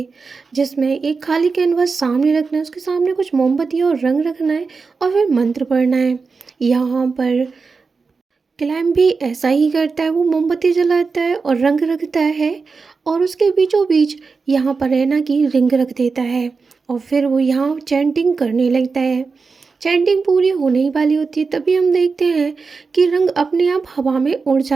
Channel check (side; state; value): left; quieter; 4.6 dB